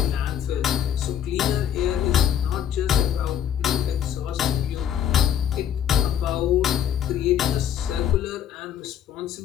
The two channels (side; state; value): right; quieter; 9.6 dB